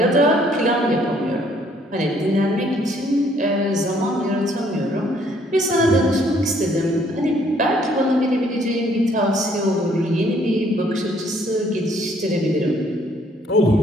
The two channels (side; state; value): both; normal; correlation 0.64